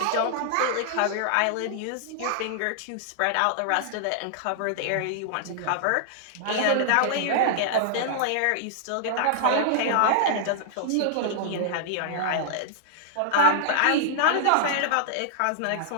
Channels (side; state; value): both; different; correlation -0.01